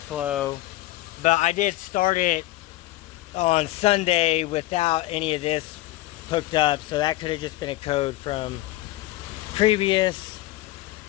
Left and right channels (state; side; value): quieter; right; 17.1 dB